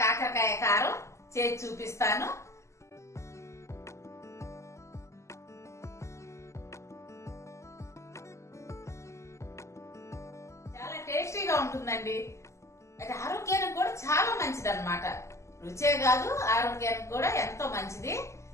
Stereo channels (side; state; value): right; late; 0.14 ms